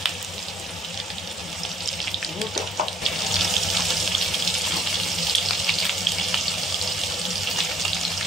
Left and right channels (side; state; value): both; normal; correlation 0.61